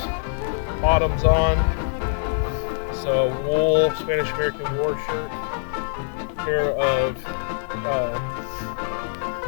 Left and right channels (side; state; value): right; silent; digital silence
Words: bottoms on. So wool Spanish-American War shirt, a pair of